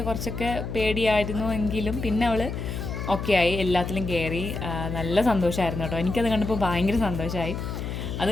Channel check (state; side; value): noise; left; hum, 5 dB below the sound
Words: കുറച്ചൊക്കെ പേടിയായിരുന്നു എങ്കിലും പിന്നെ അവൾ ഓക്കെ ആയി, എല്ലാത്തിലും കയറി. നല്ല സന്തോഷമായിരുന്നു കേട്ടോ. എനിക്കത് കണ്ടപ്പോൾ ഭയങ്കര സന്തോഷമായി. അത്